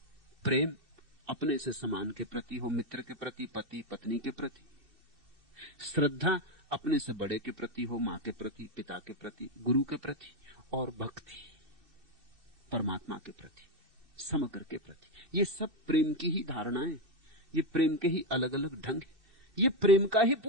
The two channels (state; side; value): late; left; 2.6 ms